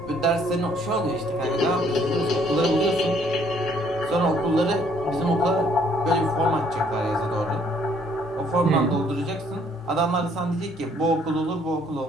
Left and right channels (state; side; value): normal; both; correlation 0.64